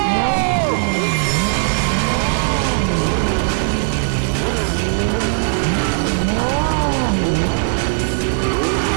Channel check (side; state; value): left; silent; digital silence